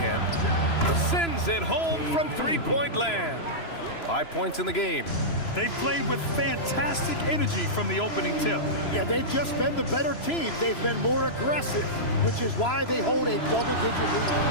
Sends it home from three-point land. 5 points in the game. They played with fantastic energy from the opening tip. Yeah, they've just been the better team. They've been more aggressive, which is why they hold a double-digit lead.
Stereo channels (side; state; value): right; late; 3.0 ms